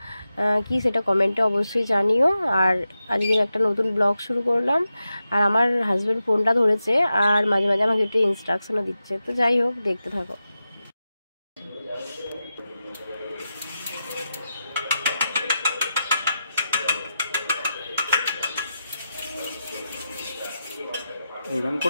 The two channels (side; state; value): both; inverted; correlation -0.90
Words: কি সেটা কমেন্টে অবশ্যই জানিও। আর আজকের একটা নতুন ব্লগ শুরু করলাম। আর আমার হাজব্যান্ড ফোনটা ধরেছে আর মাঝে মাঝে আমাকে একটু ইনস্ট্রাকশনও দিচ্ছে। তো যাই হোক, দেখতে থাকো। ওরকম